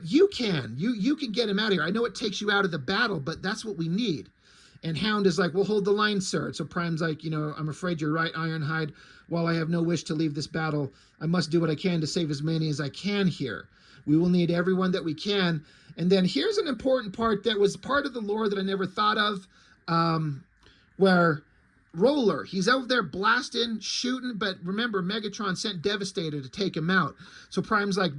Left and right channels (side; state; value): both; identical; correlation 1.00